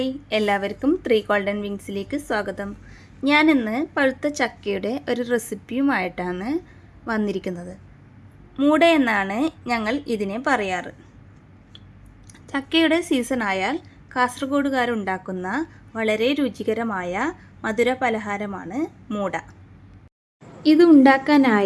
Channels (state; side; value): identical; both; correlation 1.00